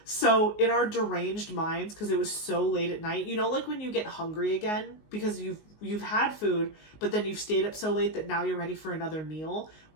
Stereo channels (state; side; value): late; right; 19 ms